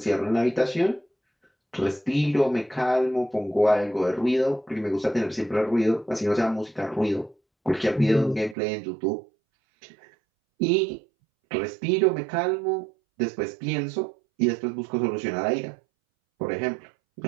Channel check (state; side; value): drops out; left; at 8.6 s